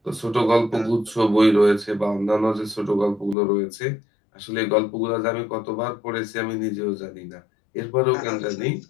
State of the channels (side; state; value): right; drops out; at 3.4 s